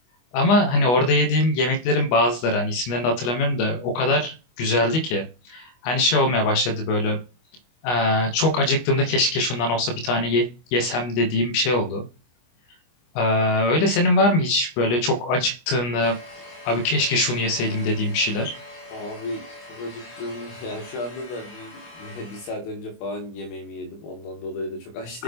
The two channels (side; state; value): right; late; 25 ms